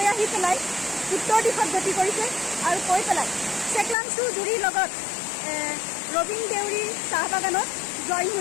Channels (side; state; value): right; drops out; at 4.0 s